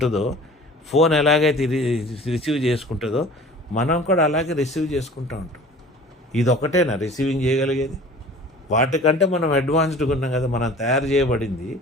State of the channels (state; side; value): normal; both; correlation 0.44